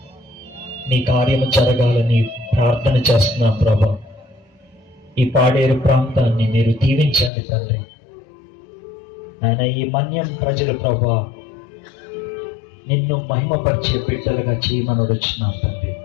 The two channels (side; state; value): right; drops out; at 7.3 s